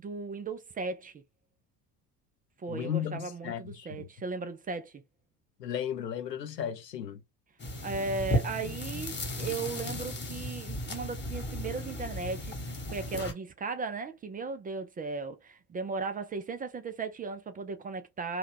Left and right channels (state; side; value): normal; both; correlation 0.20